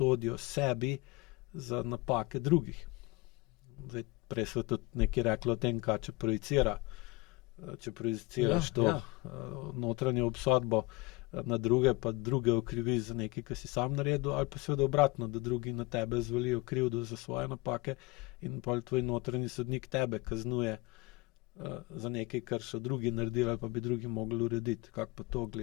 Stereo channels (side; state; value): right; quieter; 22.9 dB